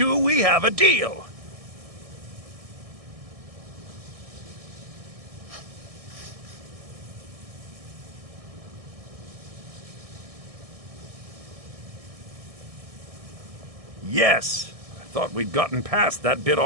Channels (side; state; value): left; late; 1.6 ms